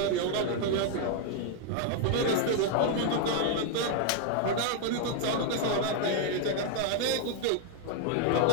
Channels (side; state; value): both; different; correlation 0.00